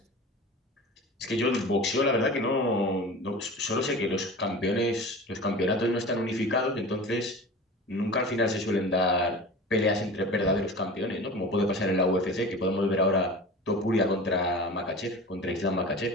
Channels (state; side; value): normal; both; correlation 0.35